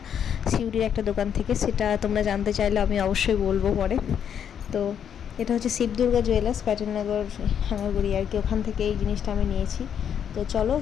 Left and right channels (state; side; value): quieter; right; 8.5 dB